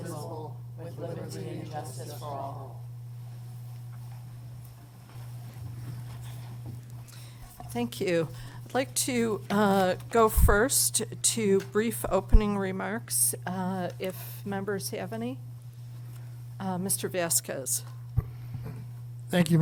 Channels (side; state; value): both; identical; correlation 1.00